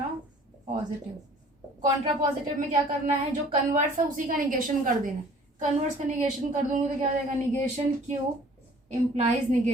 कॉन्ट्रापॉजिटिव में क्या करना है, जो कन्वर्स है उसी का निगेशन कर देना है। कन्वर्स का निगेशन कर दूंगी तो क्या हो जाएगा, negation Q implies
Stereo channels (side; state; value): both; normal; correlation 0.52